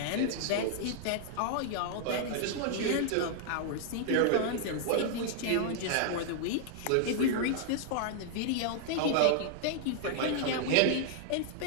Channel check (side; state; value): both; different; correlation -0.01